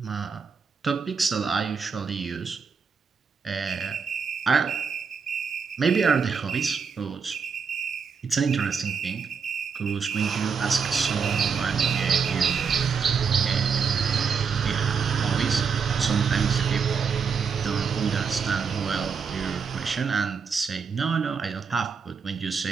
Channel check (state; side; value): quieter; left; 5.9 dB